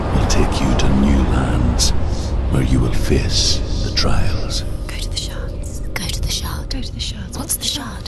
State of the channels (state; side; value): identical; both; correlation 1.00